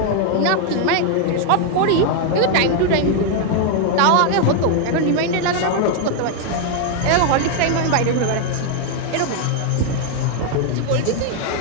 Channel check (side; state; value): both; different; correlation 0.00